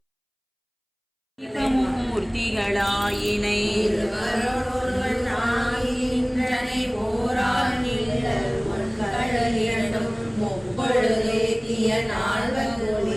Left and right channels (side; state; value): both; identical; correlation 1.00